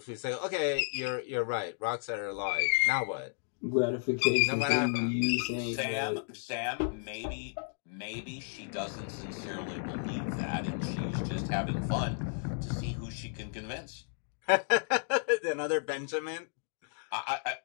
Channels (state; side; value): silent; right; digital silence